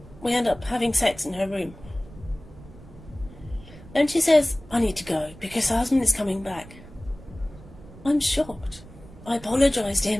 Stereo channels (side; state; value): right; noise; rumble, 19 dB below the sound